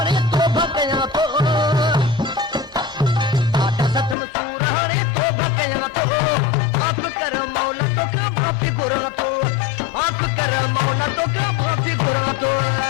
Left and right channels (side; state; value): right; drops out; at 4.2 s